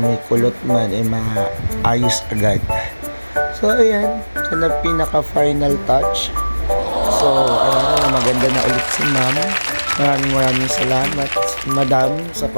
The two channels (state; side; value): inverted; both; correlation -1.00